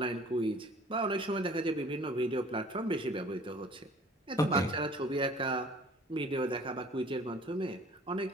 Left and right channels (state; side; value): normal; both; correlation 0.51